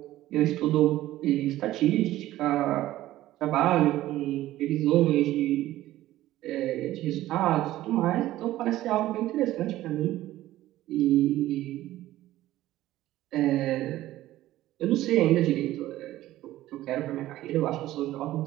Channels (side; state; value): left; quieter; 15.1 dB